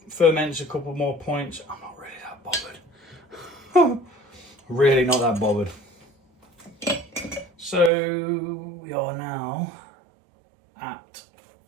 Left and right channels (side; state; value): left; drops out; at 7.9 s